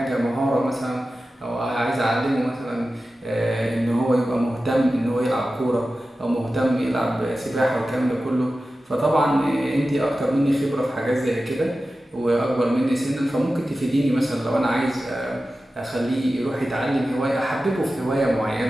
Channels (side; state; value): both; normal; correlation 0.94